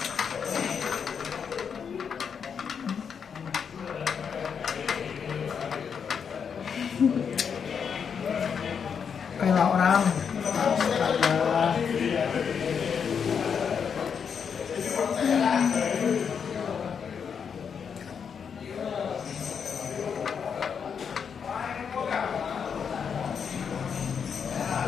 Kayak orang. Astaga.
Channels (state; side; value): quieter; right; 6.8 dB